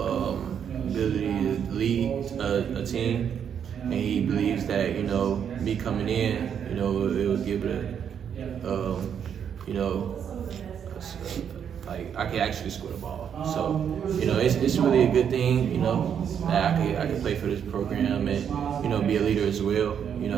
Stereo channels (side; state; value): left; quieter; 8.2 dB